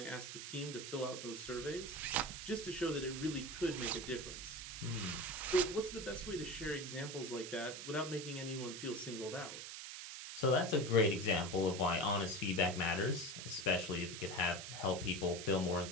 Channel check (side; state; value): right; noise; hiss, 8 dB below the sound